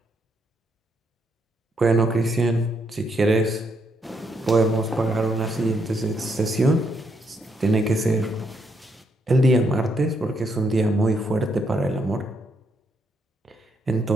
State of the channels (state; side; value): normal; both; correlation 0.76